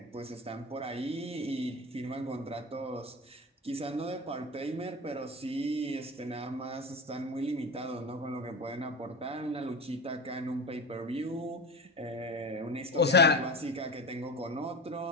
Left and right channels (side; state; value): both; normal; correlation 0.27